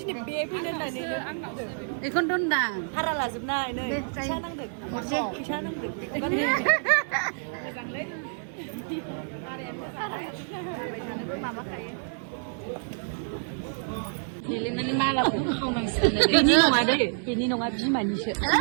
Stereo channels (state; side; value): silent; left; 59 dB below the other